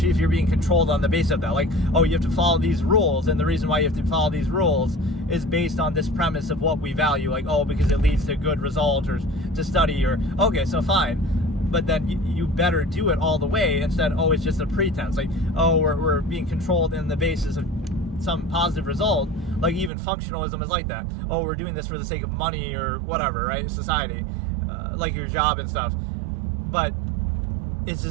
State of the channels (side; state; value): left; drops out; at 19.9 s